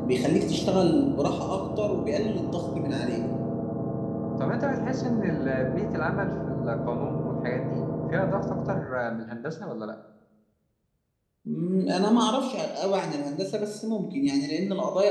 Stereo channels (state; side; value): identical; both; correlation 1.00